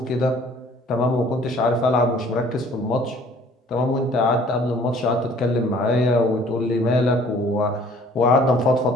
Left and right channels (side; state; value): both; normal; correlation 0.54